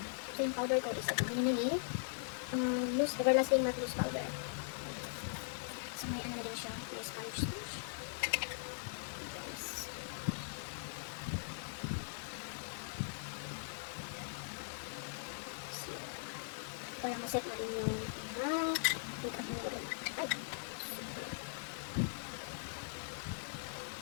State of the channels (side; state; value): right; silent; 51 dB below the other